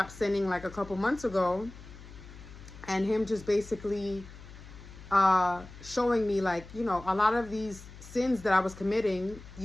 sinning like a couple months ago, and him just basically showing me like, you know, a lot of these sins that I was committing,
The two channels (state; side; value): noise; left; hum, 17 dB below the sound